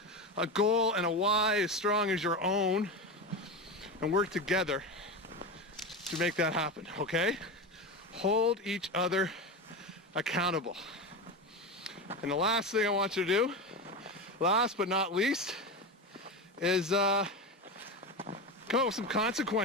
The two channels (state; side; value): normal; both; correlation 0.20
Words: a goal and a why as strong as your own, and work together to make that happen, okay? Hold each other accountable. And the last thing I want you to do, last but not least, is come up with some